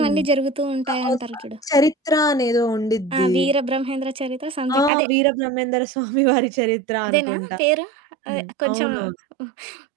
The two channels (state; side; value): drops out; left; at 4.9 s